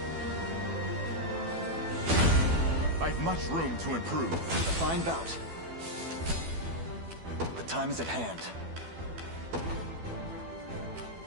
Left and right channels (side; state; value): left; late; 12 ms